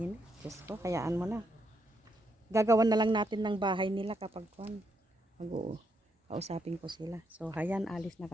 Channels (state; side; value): normal; both; correlation 0.78